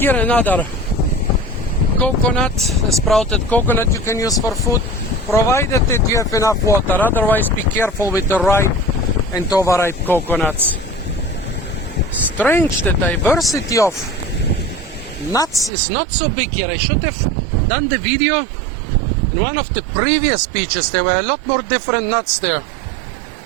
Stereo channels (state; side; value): drops out; left; at 15.7 s